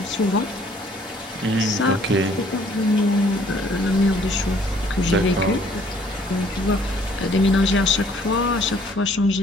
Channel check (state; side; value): normal; both; correlation 0.60